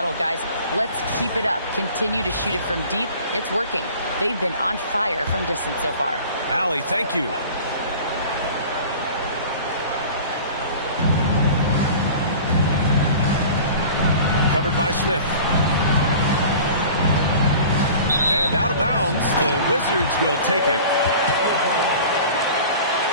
guys, let's keep it up. Continue to shoot it from deep. It's working. They've been on fire from distance so far. Allie, thank you. Covered by Smith. And out of bounds, the Wizards will take it.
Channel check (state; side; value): inverted; both; correlation -0.42